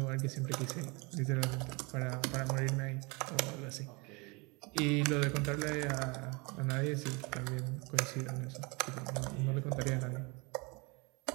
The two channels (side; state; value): left; quieter; 28.4 dB